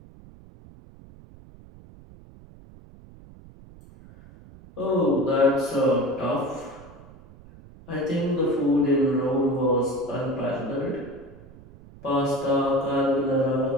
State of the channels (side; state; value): right; noise; rumble, 21 dB below the sound